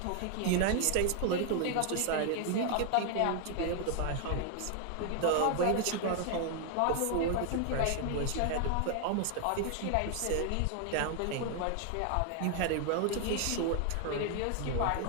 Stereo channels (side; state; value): both; different; correlation 0.00